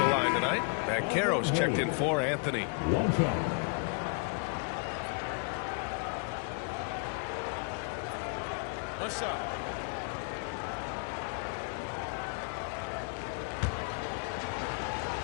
line tonight. Banchero's checked in for Anthony. What's up?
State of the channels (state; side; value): quieter; right; 39.1 dB